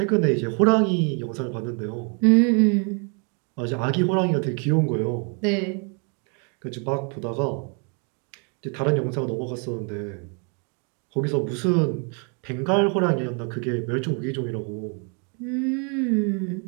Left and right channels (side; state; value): left; quieter; 37.5 dB